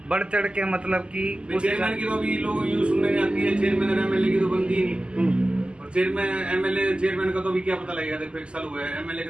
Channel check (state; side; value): late; left; 0.050 ms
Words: बढ़ चढ़ के, मतलब कि चेयरमैन की तो अभी लोग यूँ सुनने में आती है, चेयरमैन और एमएलए की तो बनती ही नहीं। और चेयरमैन का तो अभी क्या पता लगेगा, देखो 1 साल हुआ है, एमएलए